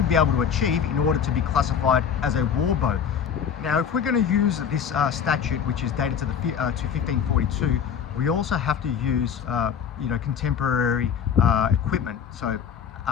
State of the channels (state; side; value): quieter; right; 7.7 dB